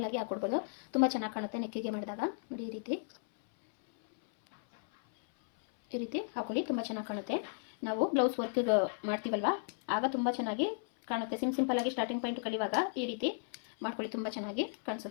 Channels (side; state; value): right; silent; 55 dB below the other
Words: ಹಾಕೊಡ್ಬೋದು. ತುಂಬ ಚೆನ್ನಾಗಿ ಕಾಣುತ್ತೆ ನೆಕ್ಕಿಗೆ ಮಾಡಿದಾಗ. ನೋಡಿ ಈ ರೀತಿ ಹಾಕೊಳ್ಳಿ, ತುಂಬ ಚೆನ್ನಾಗಿ ಕಾಣುತ್ತೆ. ನಾವು ಬ್ಲೌಸ್ ವರ್ಕ್ಗೆ ಮಾಡ್ತೀವಲ್ವ ಆಗ ತುಂಬ ಚೆನ್ನಾಗಿ ಕಾಣುತ್ತೆ. ಸಿಂಪಲ್ಲಾಗಿ ಸ್ಟಾರ್ಟಿಂಗ್ ಪಾಯಿಂಟ್ ಕಲಿಯುವಾಗ ಈ ರೀತಿ ಮಾಡ್ಕೊಳ್ಳಿ, ತುಂಬ ಚೆನ್ನಾಗಿ